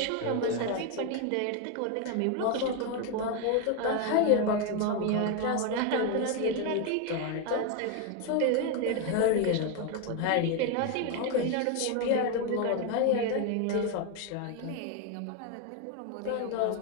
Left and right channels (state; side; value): different; both; correlation 0.02